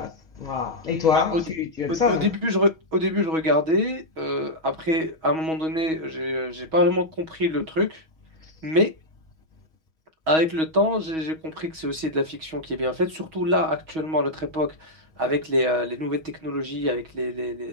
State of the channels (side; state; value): left; late; 6.3 ms